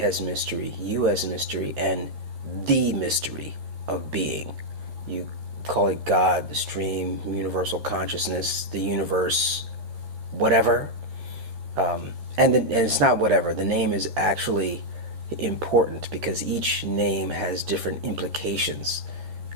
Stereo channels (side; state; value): left; late; 13 ms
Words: as mystery, you as mystery, and the mystery of being. You call it God, the stream, universal consciousness, the universe, whatever. And it's not whatever. The name is actually important because each name has different implications,